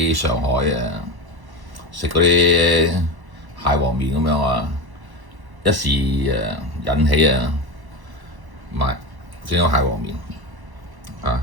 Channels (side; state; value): left; late; 1.1 ms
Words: 上海食嗰啲蟹黃面咁樣啊，一時引起買整個蟹黃面啊！